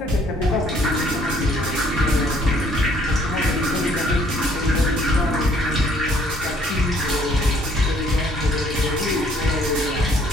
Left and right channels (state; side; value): normal; both; correlation 0.62